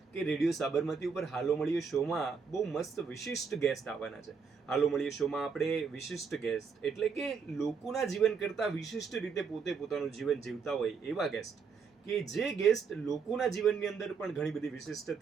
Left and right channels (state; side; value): quieter; left; 5.7 dB